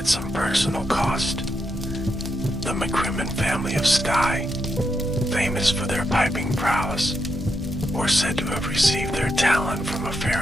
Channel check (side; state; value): both; normal; correlation 0.83